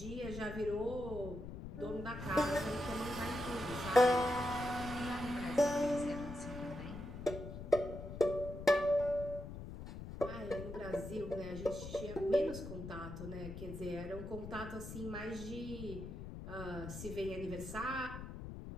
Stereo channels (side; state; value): left; noise; rumble, 9 dB below the sound